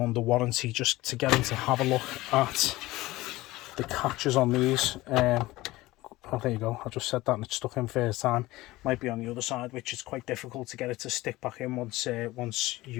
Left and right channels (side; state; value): right; quieter; 18.7 dB